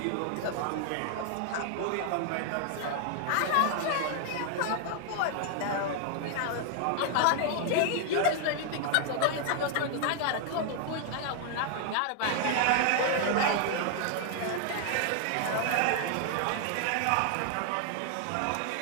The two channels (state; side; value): different; both; correlation 0.00